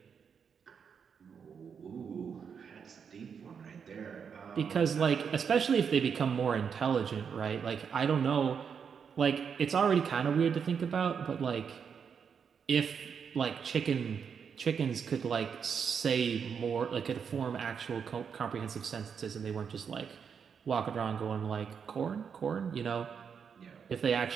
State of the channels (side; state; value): left; quieter; 6.8 dB